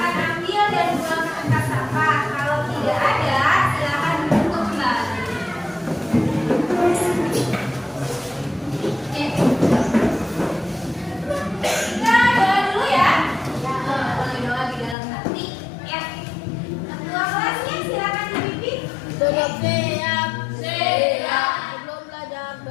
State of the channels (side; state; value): right; drops out; at 15.0 s